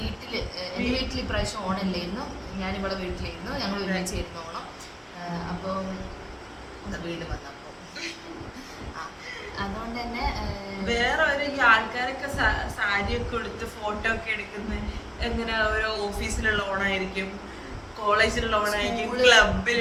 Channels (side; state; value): both; identical; correlation 1.00